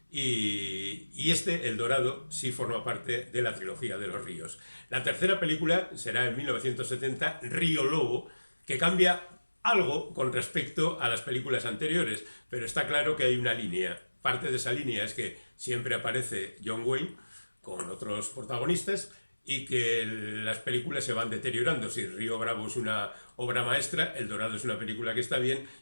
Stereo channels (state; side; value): inverted; both; correlation -1.00